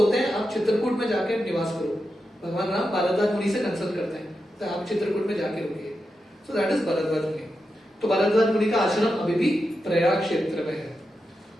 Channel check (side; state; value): both; normal; correlation 0.88